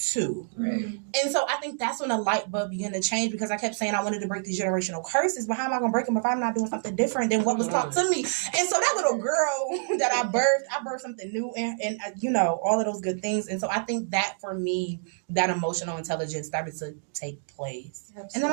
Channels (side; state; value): left; silent; digital silence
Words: Right. And so I think that's when the light bulb began to change, because I kept saying I wanted to break these generational curses, but how am I going to break them if I'm not doing something different than what was taught to me? And so that little girl that I birthed something new and all of those good things. And so I think that for me, that emotional intelligence started to take place. Absolutely. And then